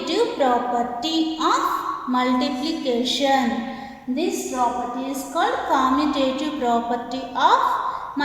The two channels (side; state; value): both; identical; correlation 1.00